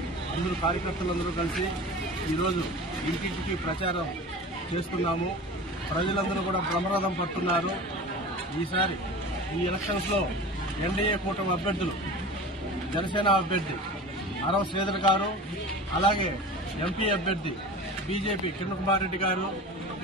అందరూ కార్యకర్తలందరూ కలిసి ఈరోజు ఇంటింటికి ప్రచారం చేస్తున్నాము. ప్రజలందరూ కూడా బ్రహ్మరథం పడుతున్నారు. ఈసారి ఈ ఎలక్షన్స్ లో ఎన్డీఏ కూటమి అభ్యర్థులు, జనసేన అభ్యర్థి అరవ శ్రీధర్ గారు, అలాగే ఎంపీ అభ్యర్థి బీజేపీ కిరణ్ కుమార్ రెడ్డి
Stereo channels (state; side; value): normal; both; correlation 0.35